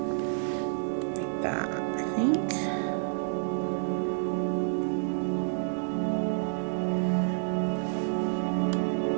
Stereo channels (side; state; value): left; silent; digital silence